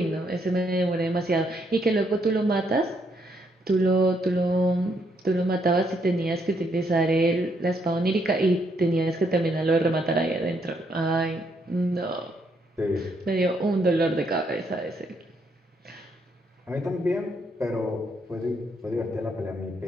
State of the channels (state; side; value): normal; both; correlation 0.74